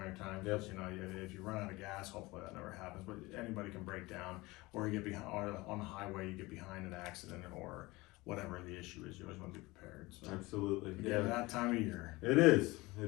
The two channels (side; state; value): right; quieter; 21.7 dB